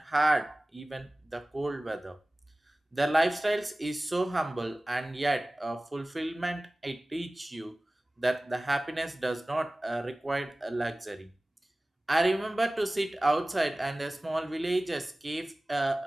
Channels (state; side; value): normal; both; correlation 0.98